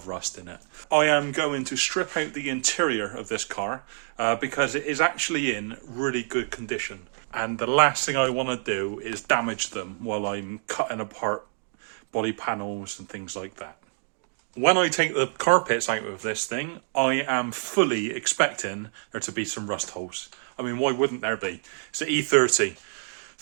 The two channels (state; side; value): silent; left; digital silence